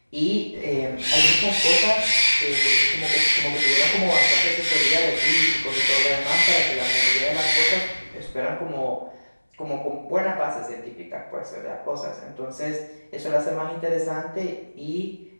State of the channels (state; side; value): inverted; both; correlation -1.00